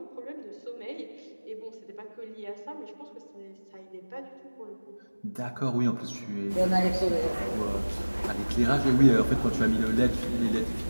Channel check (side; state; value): both; inverted; correlation -1.00